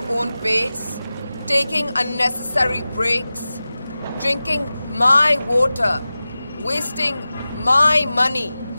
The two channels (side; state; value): both; inverted; correlation -0.96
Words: own pace? Taking unnecessary breaks? Drinking my water? Wasting my money?